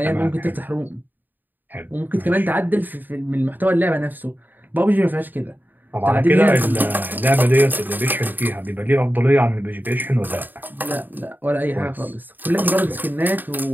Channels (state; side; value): late; left; 0.089 ms